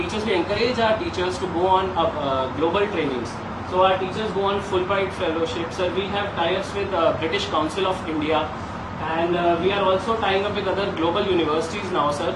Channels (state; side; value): identical; both; correlation 1.00